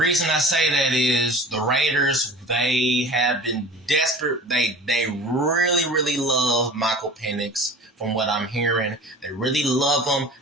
I say that is the Raiders, they have been desperate. They really, really love Michael Penix from what I'm hearing. They really love him.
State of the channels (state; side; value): normal; both; correlation 0.40